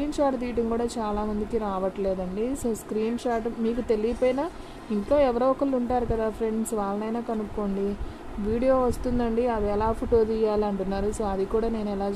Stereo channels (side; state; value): both; identical; correlation 1.00